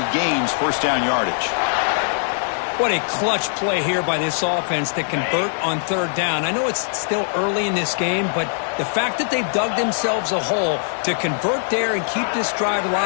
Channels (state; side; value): silent; right; 65 dB below the other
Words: gains first down yardage. What a clutch play here by this offense to convert on third down. I know it's still early in this game, but the fact that they've dug themselves a hole to convert there and keep this drive